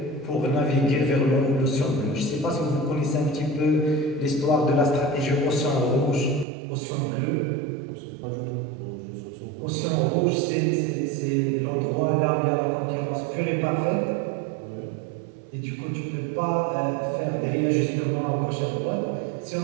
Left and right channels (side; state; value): left; drops out; at 6.5 s